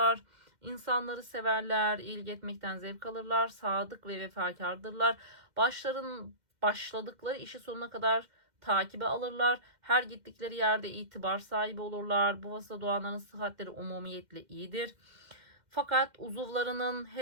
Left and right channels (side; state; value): left; late; 2.1 ms